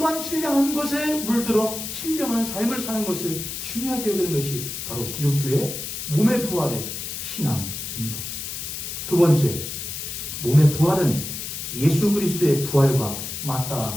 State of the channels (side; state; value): left; noise; hiss, 6 dB below the sound